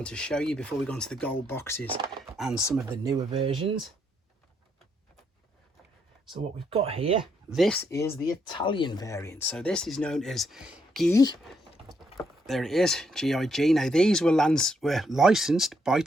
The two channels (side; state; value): both; normal; correlation 0.75